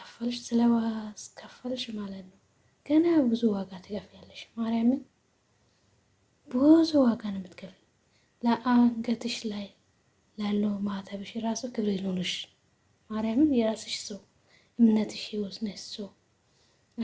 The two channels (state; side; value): identical; both; correlation 1.00